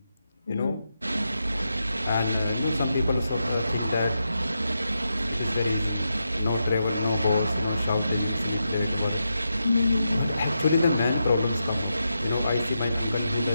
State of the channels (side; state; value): both; inverted; correlation -0.86